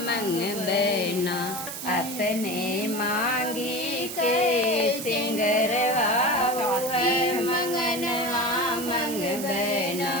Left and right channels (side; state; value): right; noise; hiss, 8 dB below the sound